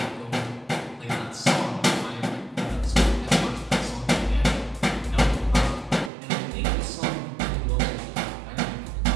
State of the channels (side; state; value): left; drops out; at 6.1 s